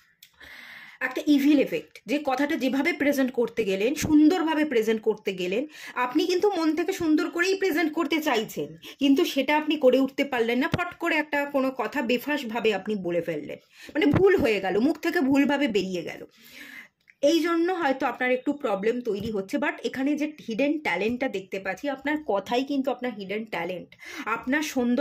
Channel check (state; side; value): identical; both; correlation 1.00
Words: একটা ইভিল এফেক্ট, যে কথাটা যেভাবে প্রেজেন্ট করতে গেলেন, সুন্দরভাবে প্রেজেন্ট করতে গেলেন, আপনি কিন্তু মন থেকে সুন্দর করেই প্রেজেন্ট করতে চাইছেন, কিন্তু সেটা আপনি করে উঠতে পারলেন না, ফট করে একটা কোনো কথা বেফাঁসভাবে আপনি বলে ফেললেন, মানে ভুল হয়ে গেল, মুখ থেকে ভুলভাবে বেরিয়ে গেল। এই জন্য হয়তো আপনার একটু প্রবলেম তৈরি হচ্ছে। বাট এখানে যে হিডেন ট্যালেন্টটা দেখতে পাচ্ছি, আপনার কথাই কিন্তু আপনার হিডেন ট্যালেন্ট। আপনার